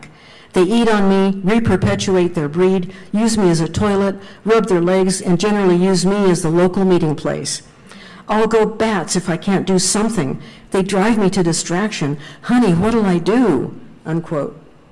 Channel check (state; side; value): identical; both; correlation 1.00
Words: They eat on me, reperpetuate their breed, use me as a toilet, rub their legs, and generally use me as the local meeting place. I'll go bats if I can't do something. They drive me to distraction. Honey, what'll I do? Unquote.